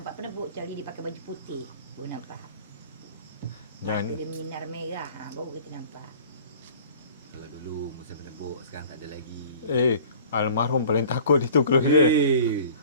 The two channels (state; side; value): inverted; both; correlation -0.46